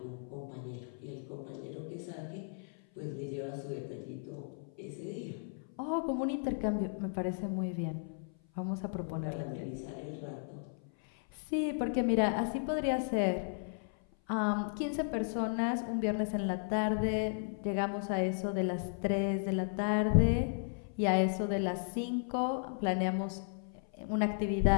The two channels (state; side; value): silent; right; 54 dB below the other